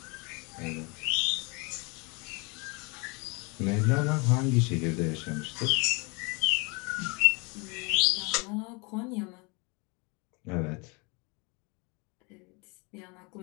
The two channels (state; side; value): quieter; right; 30.1 dB